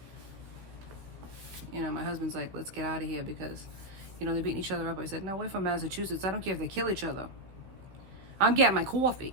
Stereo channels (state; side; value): late; left; 15 ms